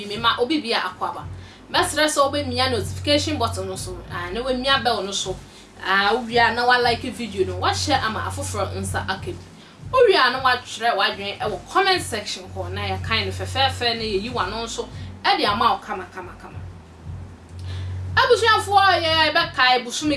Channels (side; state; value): both; identical; correlation 1.00